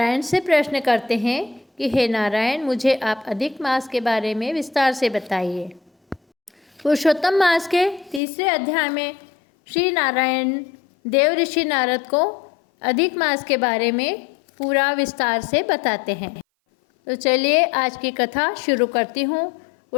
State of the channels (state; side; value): drops out; right; at 8.2 s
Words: से प्रश्न करते हैं कि हे नारायण, मुझे आप अधिक मास के बारे में विस्तार से बताइए। पुरुषोत्तम मास के तीसरे अध्याय में श्री नारायण देव ऋषि नारद को अधिक मास के बारे में पूरा विस्तार से बताते हैं। तो चलिए आज की कथा शुरू करती हूँ।